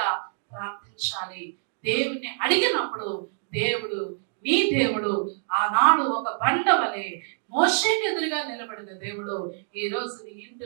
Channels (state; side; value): silent; left; digital silence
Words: ప్రార్థించాలి. దేవుని అడిగినప్పుడు దేవుడు, నీ దేవుడు ఆనాడు ఒక బండ వలె మోషేకి ఎదురుగా నిలబడిన దేవుడు ఈ రోజు నీ